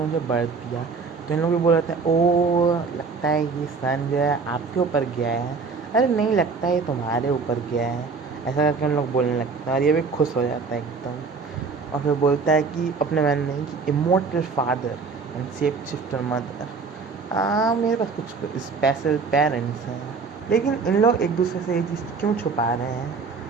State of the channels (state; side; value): quieter; left; 4.8 dB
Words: बर्थ दिया। तो इन लोग भी बोल रहे हैं ओ लगता है ये सन जो है आपके ऊपर गया है। अरे नहीं लगता है ये तुम्हारे ऊपर गया है, ऐसा करके उन लोग बोलने लगता है और ये भी खुश हो जाता है एकदम। और फिर बोलता है कि अपने मन में कि immortal father and safe shifter mother, मेरे पास कुछ स्पेशल पेरेंट्स हैं। लेकिन इन लोग एक दूसरे से ये चीज़ क्यों छुपा रहे हैं